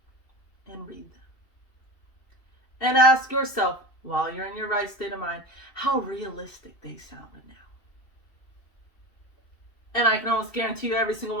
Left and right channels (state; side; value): late; right; 2.7 ms